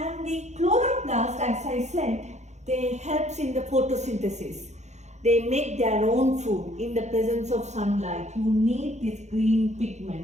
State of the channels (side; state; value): left; late; 0.33 ms